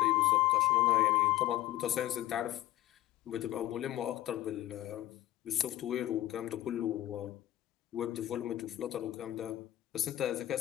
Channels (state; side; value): quieter; right; 14.5 dB